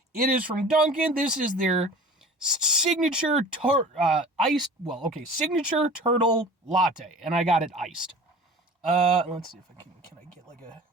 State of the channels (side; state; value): both; normal; correlation 0.41